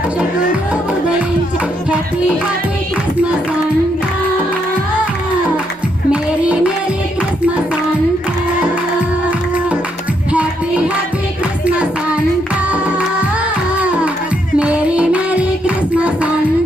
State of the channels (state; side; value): normal; both; correlation 0.76